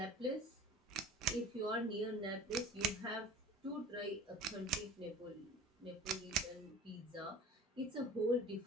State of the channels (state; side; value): normal; both; correlation 0.41